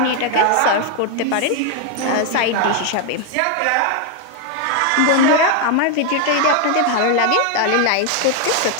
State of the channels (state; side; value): different; both; correlation 0.01